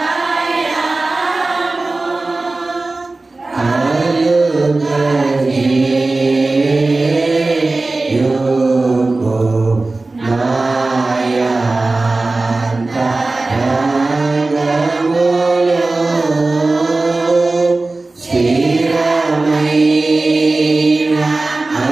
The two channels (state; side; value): quieter; left; 3.2 dB